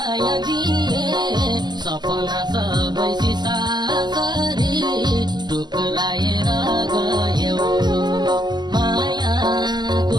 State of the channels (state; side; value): late; left; 0.21 ms